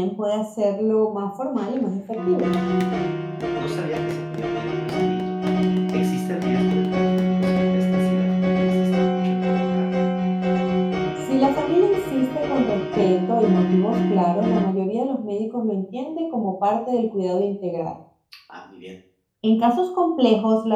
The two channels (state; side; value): identical; both; correlation 1.00